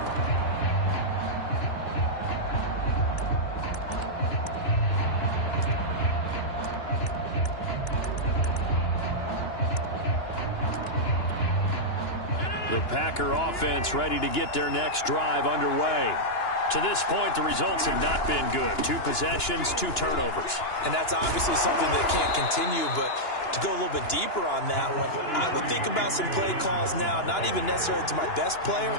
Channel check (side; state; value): right; late; 2.9 ms